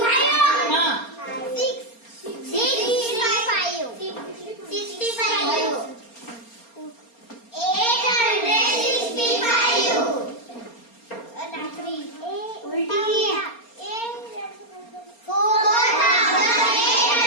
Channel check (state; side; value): late; right; 4.3 ms